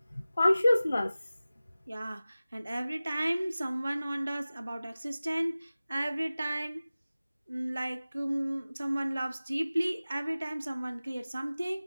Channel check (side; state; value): both; inverted; correlation -0.97